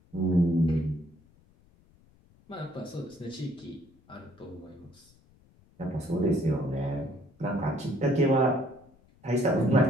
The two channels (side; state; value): left; noise; rumble, 30 dB below the sound